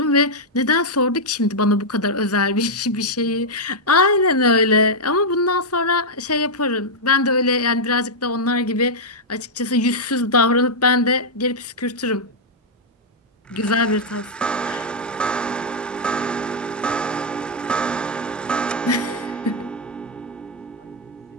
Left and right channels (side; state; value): both; normal; correlation -0.04